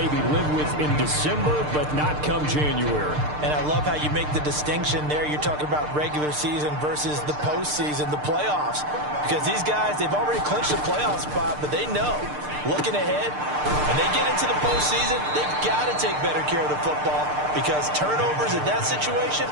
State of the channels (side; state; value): left; late; 6.7 ms